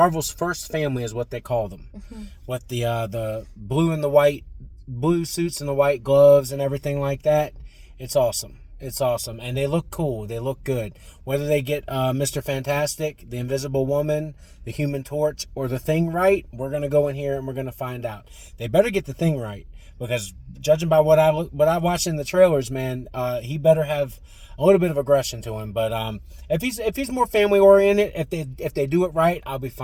first family is what they call them. With the blue and the white, blue suits and the white gloves and everything like that. It's awesome. It's awesome. And they look cool. They look good. Whether they get Mr. Fantastic, the Invisible Woman, the Human Torch, or the Thing right, we're going to go in here and we're going to find out. They better get the Thing right. Because judging by what I watched in the trailers, man, he better have a little bit of aggression to him. But if he's more family oriented, if they do it right, I'll be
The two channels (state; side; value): identical; both; correlation 1.00